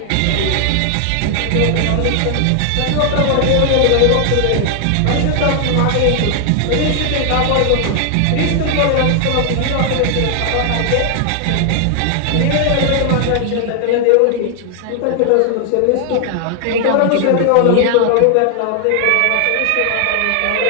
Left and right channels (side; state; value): both; different; correlation 0.00